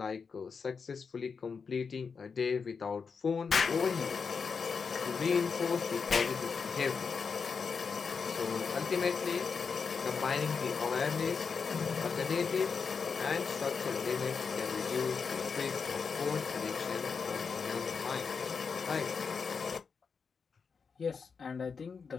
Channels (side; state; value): right; quieter; 5.5 dB